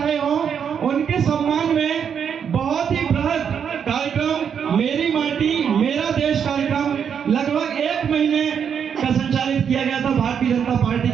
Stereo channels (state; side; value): quieter; left; 7.6 dB